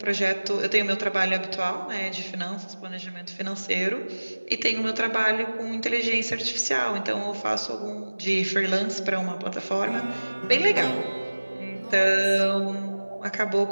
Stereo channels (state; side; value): inverted; both; correlation -1.00